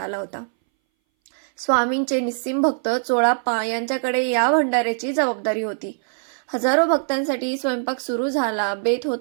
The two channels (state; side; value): silent; left; 61 dB below the other